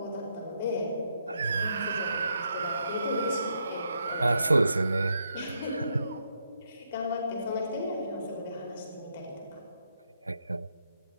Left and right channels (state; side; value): inverted; both; correlation -0.78